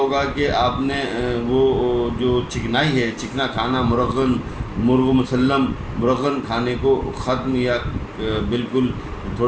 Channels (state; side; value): identical; both; correlation 1.00